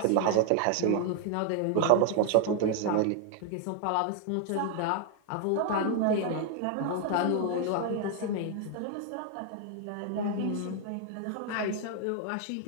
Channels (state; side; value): different; both; correlation 0.00